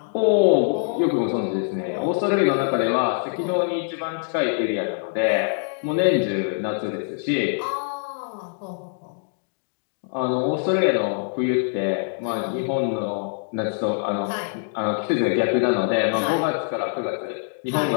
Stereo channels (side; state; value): right; silent; digital silence